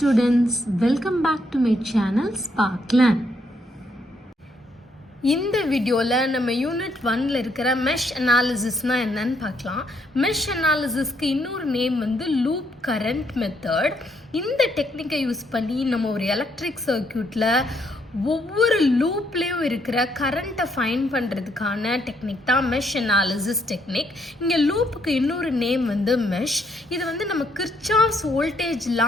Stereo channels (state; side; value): normal; both; correlation 0.73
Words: welcome back to my channel Sparkland. இந்த வீடியோவில் நம்ம யூனிட் 1ல் இருக்கிற மெஷ் அனாலிசிஸ்னால் என்னன்னு பார்க்கலாம். மெஷ் அனாலிசிஸ்க்கு இன்னொரு நேம் வந்து லூப் கரண்ட் மெத்தட். இந்த டெக்னிக்கை யூஸ் பண்ணி நம்ம ஒரு எலக்ட்ரிக் சர்க்யூட்டில் ஒவ்வொரு லூப்லேயும் இருக்கிற கரண்ட்டை ஃபைண்ட் பண்ணுறதுக்கான டெக்னிக் தான் மெஷ் அனாலிசிஸ் டெக்னிக். இங்கே லூப்புக்கு இன்னொரு நேம் வந்து மெஷ். இது வந்து நம்ம கிர்ச்சாஃப்ஸ்